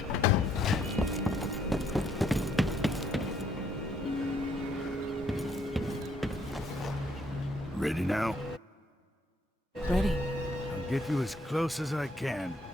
Ready now? Ready. I'll get you as close as I can.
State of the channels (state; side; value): normal; both; correlation 0.69